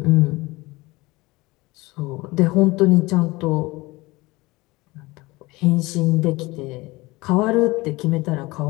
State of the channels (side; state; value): right; quieter; 21.8 dB